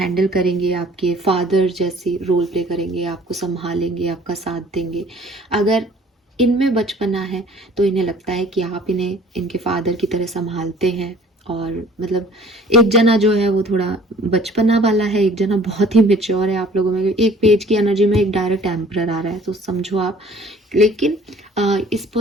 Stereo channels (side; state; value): both; normal; correlation 0.53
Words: करेंगे, आपके फादर जैसी रोल प्ले करेंगे, आपको संभालेंगे, आपका साथ देंगे। अगर इनमें बचपना है तो इन्हें लगता है कि आप इन्हें इनके फादर की तरह संभालते हैं। और मतलब एक जना जो है वो थोड़ा बचपना वाला है, एक जना बहुत ही मेच्योर है आप लोगों में। एक पेज की एनर्जी में एक डायरेक्ट एम्परर आ रहा है, तो समझो आप। लेकिन इस